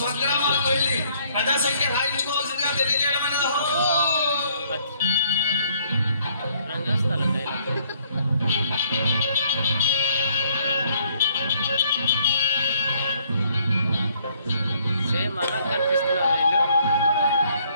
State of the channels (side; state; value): both; inverted; correlation -0.65